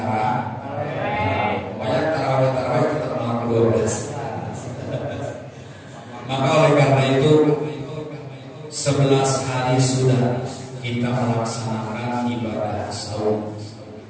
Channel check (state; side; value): identical; both; correlation 1.00